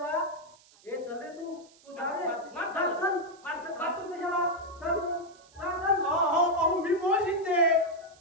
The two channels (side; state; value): right; noise; hiss, 27 dB below the sound